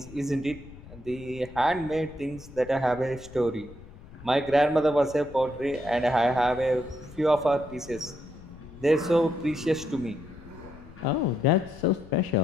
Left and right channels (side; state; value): left; noise; rumble, 18 dB below the sound